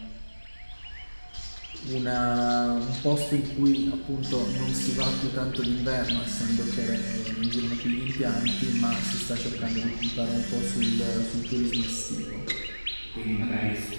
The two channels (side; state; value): both; inverted; correlation -1.00